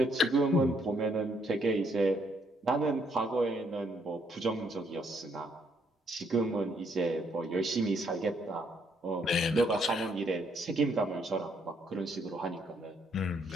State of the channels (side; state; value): both; normal; correlation 0.71